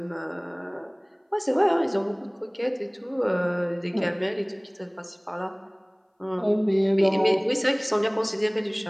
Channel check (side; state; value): both; identical; correlation 1.00